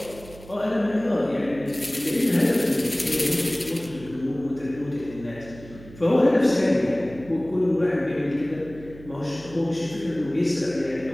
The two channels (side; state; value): right; noise; hum, 18 dB below the sound